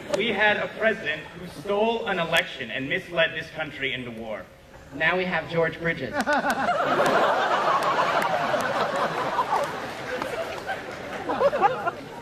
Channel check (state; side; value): identical; both; correlation 1.00